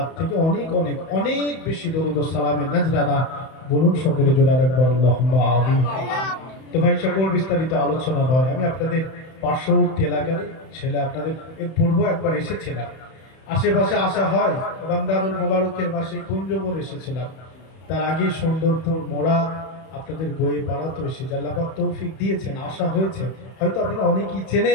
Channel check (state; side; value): late; right; 31 ms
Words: থেকে অনেক অনেক অনেক বেশি দরুদ ও সালামের নজরানা। বলুন সকলে জোরে একবার আল্লাহুম্মা আমিন। তো ভাই সকল বিস্তারিত আলোচনা নয়, আমি আপনাদের পার্শ্ববর্তী এলাকারই ছেলে, আপনাদের এর পূর্ব একবার এসেছিলাম, আশেপাশে আসা হয়, রমজানুল মোবারকের মাসে কুঞ্জবন এসেছিলাম, তার আগে সুন্দরপুর মোড়া আপনাদের গোয়ে পাড়া তো এসে আল্লাহ পাক তৌফিক দিয়েছেন, আসা হয়েছে। হয়তো আপনারা অনেকেই